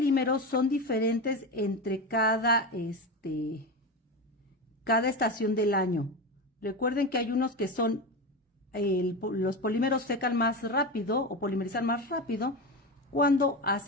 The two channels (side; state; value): both; normal; correlation 0.20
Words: son diferentes entre cada estación del año. Recuerden que hay unos que son, los polímeros secan más rápido o polimerizan más rápido cuando